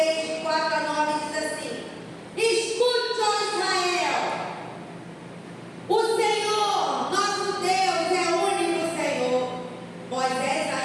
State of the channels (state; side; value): identical; both; correlation 1.00